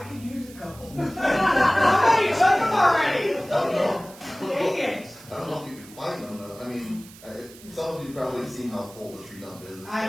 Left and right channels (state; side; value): noise; right; hiss, 20 dB below the sound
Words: could use a couple. Somebody took them already. I don't know. Dang it. I don't know if you can find them though. I mean, some of you probably seen how full the tree dump is. It's I